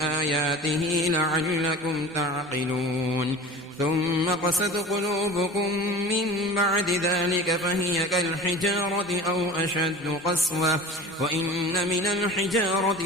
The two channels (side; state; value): both; normal; correlation 0.37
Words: آياته لعلكم تعقلون ثم قست قلوبكم من بعد ذلك فهي كالحجارة أو أشد قسوة وإن من الحجارة